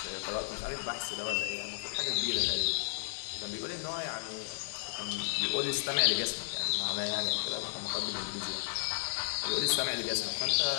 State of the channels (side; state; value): right; silent; digital silence